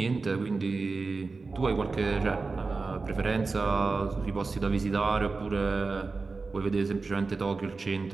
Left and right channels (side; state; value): left; quieter; 4.0 dB